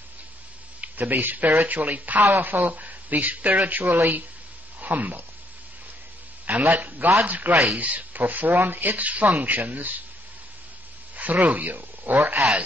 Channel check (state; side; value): normal; both; correlation 0.70